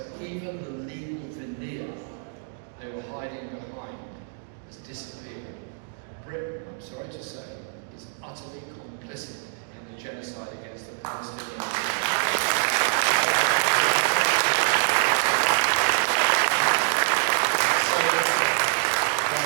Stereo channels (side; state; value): left; silent; 61 dB below the other